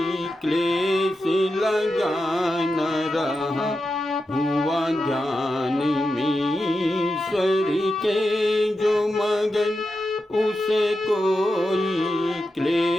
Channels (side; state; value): both; normal; correlation 0.89